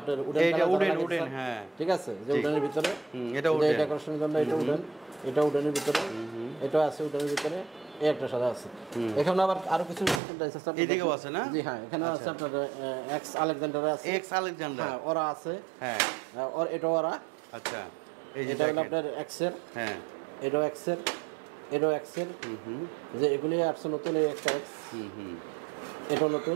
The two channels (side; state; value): left; drops out; at 10.2 s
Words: উডেন এটা কালার উডেন লাগানো উডেন, আছে, হ্যাঁ ঠিক আছে, যে উডেনের ভিতরে। এটা এই উডেন। ডেকোরেশনের জন্য এটা উডেন, এটা উডেনের ভিতরে, এটা আছে উডেনের ভিতরে, এই একটা সাদা আছে। এখানে আবার আরো কিছু ডিজাইন আছে। এদিকেও আছে না? জি হ্যাঁ, এখানে আছে আপনার এক্স আলেকজান্ডার আছে, এক্স আলেকজান্ডার, হ্যাঁ ওরা আছে, হ্যাঁ আর এটা ওরা। আচ্ছা এই যে এটা হলো দেখেন। আপনার এক্স এর, হ্যাঁ এটাও এক্স এর, এটাও এক্স এর। যে এগুলি আসছে নতুন, এই একটা এক্স, এটাও